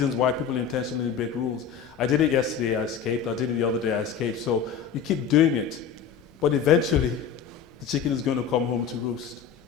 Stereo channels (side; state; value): right; quieter; 7.4 dB